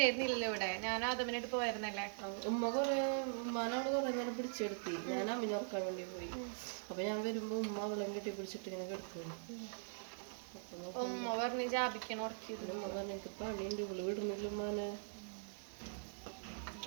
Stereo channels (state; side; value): silent; left; digital silence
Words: ഇവിടെ. ഞാൻ ആദമിനായിട്ട് പോയിരുന്നല്ലേ. ഉമ്മ ഉമ്മാനോട് കുറെ നേരം പിടിച്ചെടുത്തി. ഞാൻ അമ്മിനെ ഉറക്കാൻ വേണ്ടി പോയി. അപ്പൊ ഞാൻ വരുമ്പോ ഉമ്മ വെള്ളം കെട്ടി പിടിച്ചിട്ട് ഇങ്ങനെ കിടക്കുന്നു. ഉമ്മ പറഞ്ഞ് ജാബിക്കാൻ ഉറക്കിയിരുന്നു. ഉമ്മ പറഞ്ഞു എനിക്ക് പണിയുണ്ട്, ഇവള് വിടുന്നില്ല ഉമ്മാനെ.